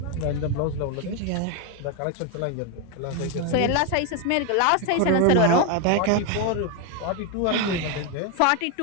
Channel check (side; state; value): both; different; correlation 0.01